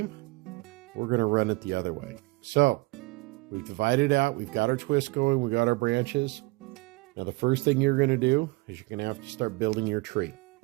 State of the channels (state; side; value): quieter; left; 23.7 dB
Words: we're going to run it the other way. So we've divided out, we've got our twist going, we got our branches. Now the first thing you're going to do is you're going to have to start building your tree.